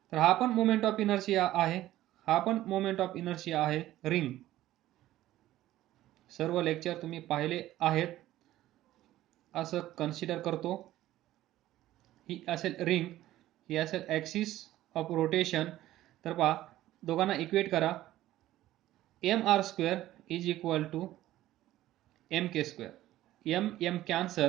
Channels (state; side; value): quieter; left; 14.7 dB